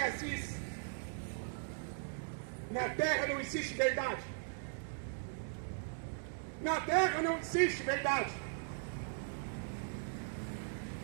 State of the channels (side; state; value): left; silent; digital silence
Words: diz: na terra não existe verdade. Na terra não existe verdade.